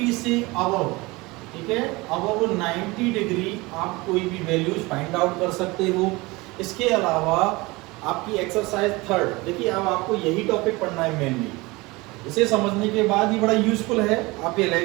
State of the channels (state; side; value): quieter; left; 23.0 dB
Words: से अबव, ठीक है, अबव 90 डिग्री आप कोई भी वैल्यूज फाइंड आउट कर सकते हो। इसके अलावा आपकी एक्सरसाइज 3, देखिए अब आपको यही टॉपिक पढ़ना है मेनली। इसे समझने के बाद ही बड़ा यूजफुल है आप